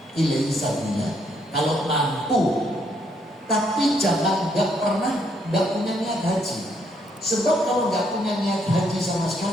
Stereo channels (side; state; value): both; normal; correlation 0.72